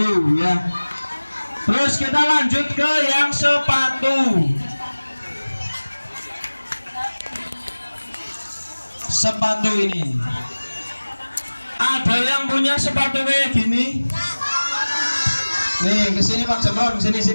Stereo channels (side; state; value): both; inverted; correlation -1.00